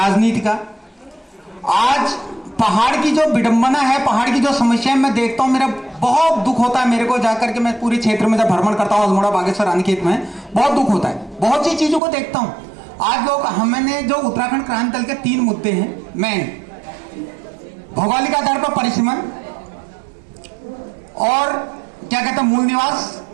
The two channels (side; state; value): left; drops out; at 12.0 s